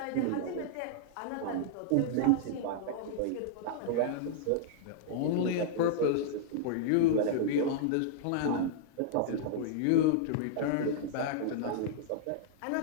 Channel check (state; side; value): different; both; correlation -0.02